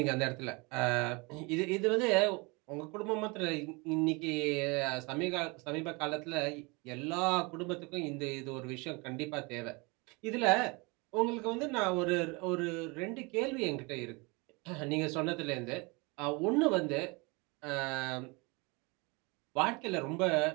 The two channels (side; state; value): left; quieter; 27.8 dB